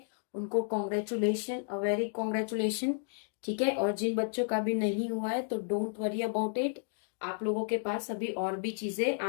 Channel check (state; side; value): silent; right; digital silence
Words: उनको कॉन्ग्रेचुलेशन, अ वेरी कॉन्ग्रेचुलेशन, ठीक है। और जिन बच्चों का भी नहीं हुआ है तो डोंट वरी अबाउट इट, आप लोगों के पास अभी और भी चीजें